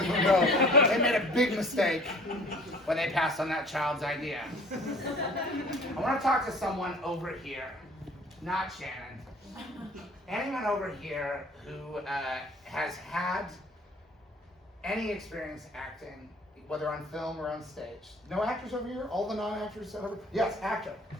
them know they made a big mistake when they passed on that child's idea. I want to talk to someone over here, not Shannon. Anyone over here who has had any experience acting, whether on film or on stage. No actors over here? All the non-actors over? Yes, actor.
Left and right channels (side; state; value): both; normal; correlation 0.49